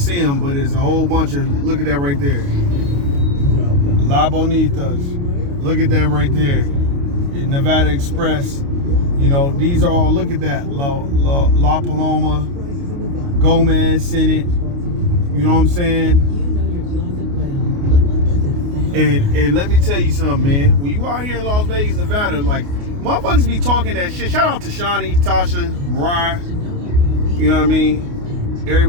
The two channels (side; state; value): left; late; 29 ms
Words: them, but there's a whole bunch of, look at that right there. La Bonitas. Look at that right there. Nevada Express. These are all, look at that. La Paloma, Gomez, Senate. You know what I'm saying? And let me tell you something, man. When you out here in Las Vegas, Nevada, like, motherfuckers be talking that shit. Shout out to Shawnee, Tasha, Mariah. You know what I mean?